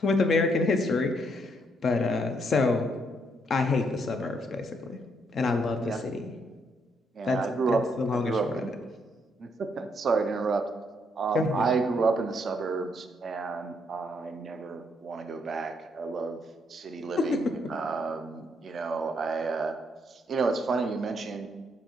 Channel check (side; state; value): both; normal; correlation 0.73